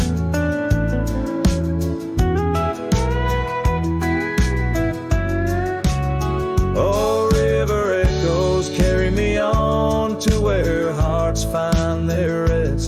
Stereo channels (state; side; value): identical; both; correlation 1.00